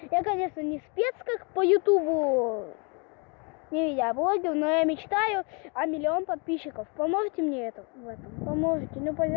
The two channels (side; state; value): right; quieter; 33.9 dB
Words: конечно, не спец, как по ютубу, не видеоблогер, но я мечтаю о 1 миллион подписчиков. Поможете мне в этом? Поможете? Ну,